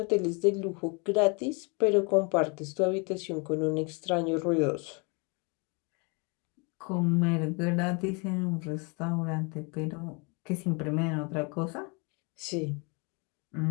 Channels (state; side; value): quieter; right; 32.0 dB